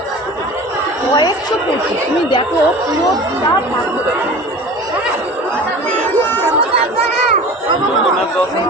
কয়েকশো পেয়েছি তুমি দেখো পুরো দর্শন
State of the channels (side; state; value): both; normal; correlation 0.38